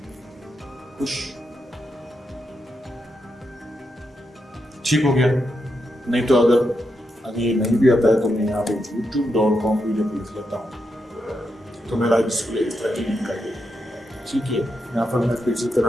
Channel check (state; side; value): normal; both; correlation 0.84